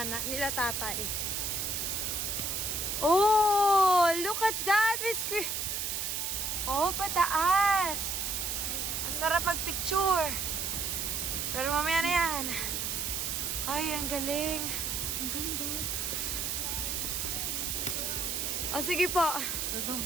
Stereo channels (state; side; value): noise; right; hiss, 1 dB below the sound